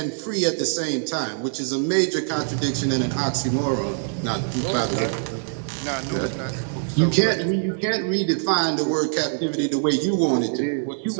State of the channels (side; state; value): left; silent; digital silence